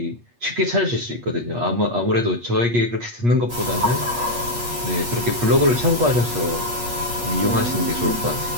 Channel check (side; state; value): left; late; 8.4 ms